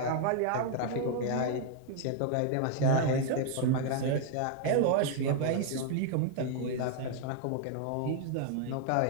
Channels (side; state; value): both; different; correlation 0.00